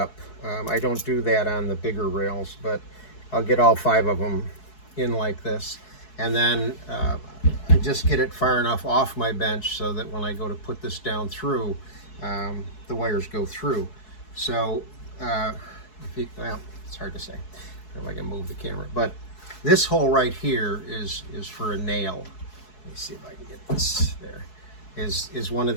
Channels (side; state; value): right; late; 4.7 ms